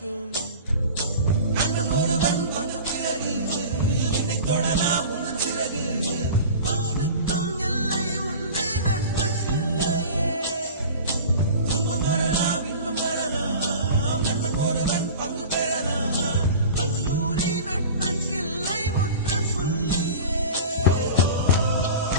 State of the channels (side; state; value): both; inverted; correlation -0.36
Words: நண்பன் ஒருவன் வந்த பிறகு விண்ணை தொடலாம் உன் சிறகு. வானுக்கும் எல்லை உண்டு நட்புக்குள்ளையே. துன்பம் வரலாம் இன்பம் வரலாம் நண்பன் ஒருவன் பங்கு பெறலாம். கல்லூரி நட்புக்கில்லை முற்றுப்புள்ளியே.